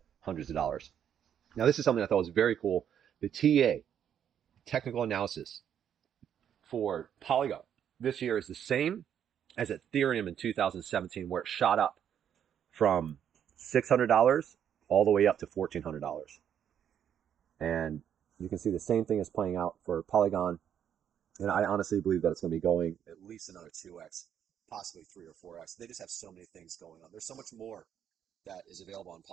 hundreds of dollars. Now, this is something I thought was very cool. The TA, technical analysis for Polygon this year is the same as Ethereum in 2017, where it shot up from $600 all the way up to $1,400. And you can see the same thing is playing out for Polygon. And I honestly believe that it's going to be going at least another 2x, possibly 3 or 4x. They just have so many things going on. There's so much more that is available on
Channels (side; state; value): left; quieter; 9.1 dB